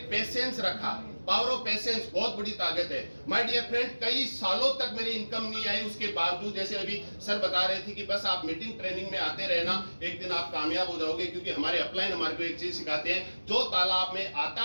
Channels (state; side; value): inverted; both; correlation -1.00